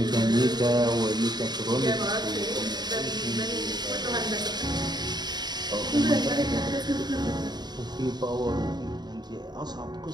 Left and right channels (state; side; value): late; left; 0.20 ms